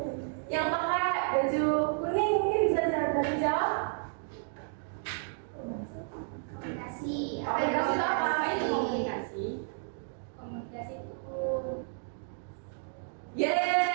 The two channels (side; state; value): left; silent; digital silence